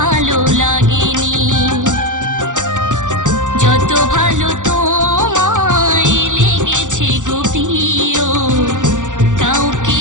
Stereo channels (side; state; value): left; late; 0.87 ms